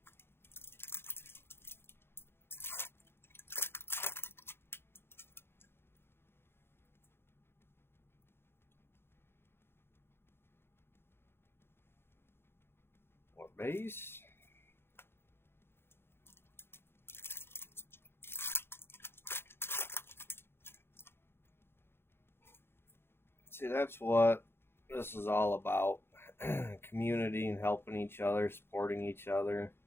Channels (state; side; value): late; right; 0.11 ms